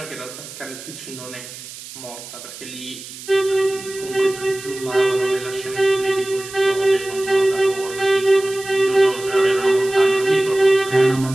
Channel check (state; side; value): noise; right; hiss, 14 dB below the sound